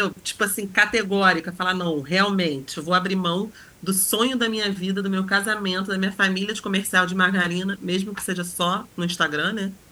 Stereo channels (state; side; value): identical; both; correlation 1.00